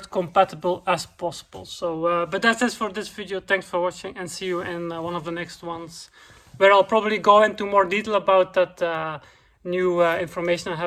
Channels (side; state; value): both; identical; correlation 1.00